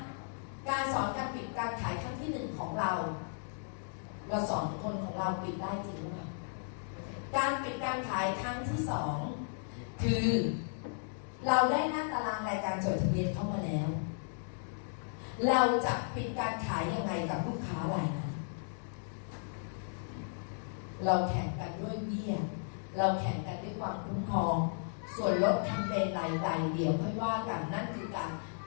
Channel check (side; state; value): right; silent; digital silence